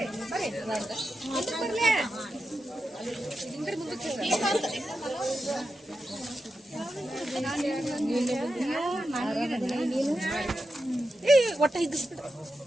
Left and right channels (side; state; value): both; normal; correlation 0.89